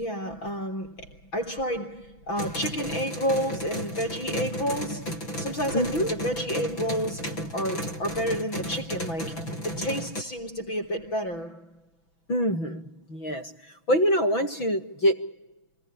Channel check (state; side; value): late; right; 6.0 ms